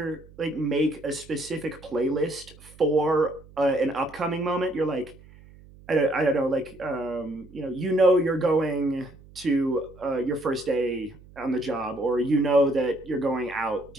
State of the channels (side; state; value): right; noise; hum, 23 dB below the sound